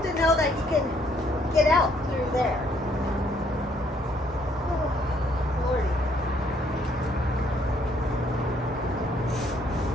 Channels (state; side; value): normal; both; correlation 0.67